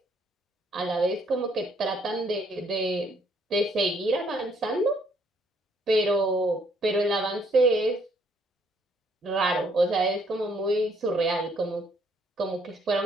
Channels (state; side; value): normal; both; correlation 0.67